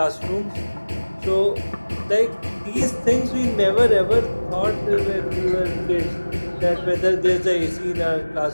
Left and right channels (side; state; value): both; inverted; correlation -1.00